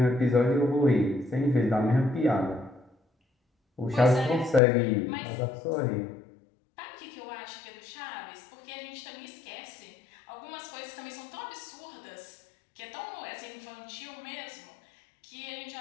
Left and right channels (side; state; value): right; drops out; at 4.6 s